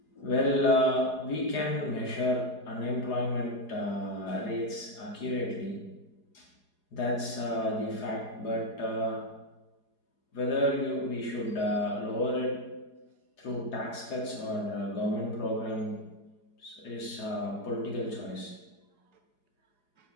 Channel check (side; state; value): right; late; 4.8 ms